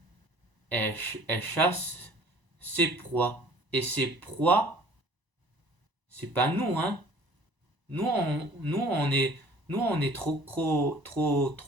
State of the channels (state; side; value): late; left; 1.0 ms